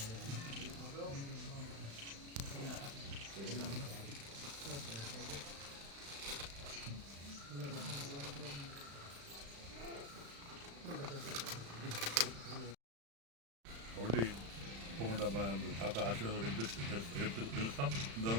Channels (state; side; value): late; left; 35 ms